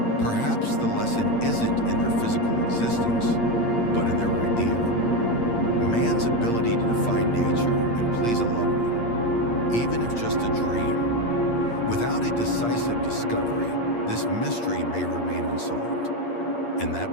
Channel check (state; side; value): late; right; 8.6 ms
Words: Perhaps the lesson isn't in their physical existence, but in their idea. Man's ability to defy nature and please a loved one, even if just a dream. Without a decisive discovery, this mystery may remain unsolved. And